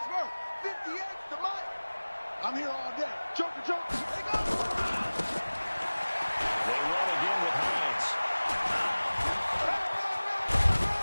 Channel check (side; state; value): both; inverted; correlation -1.00